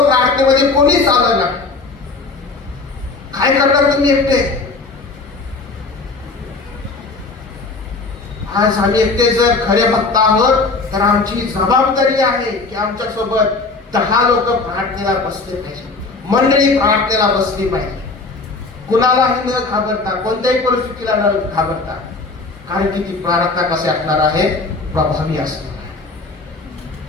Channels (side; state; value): right; quieter; 3.8 dB